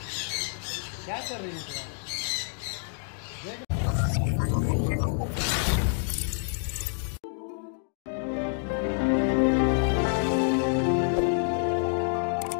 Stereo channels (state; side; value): silent; right; 57 dB below the other